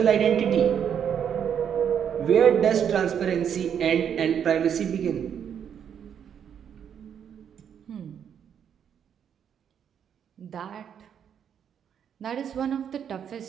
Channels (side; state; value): left; quieter; 8.4 dB